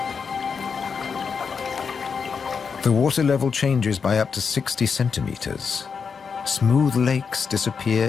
The water level changes by up to 60 centimeters. Smooth lakes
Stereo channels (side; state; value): right; quieter; 5.9 dB